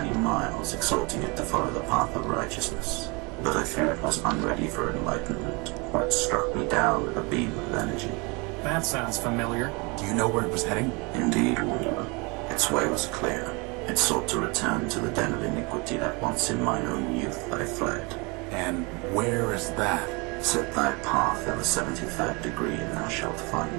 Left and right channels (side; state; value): left; quieter; 28.8 dB